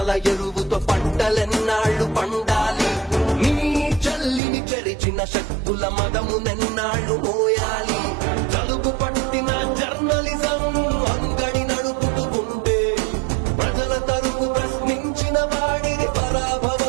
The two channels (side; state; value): left; drops out; at 4.4 s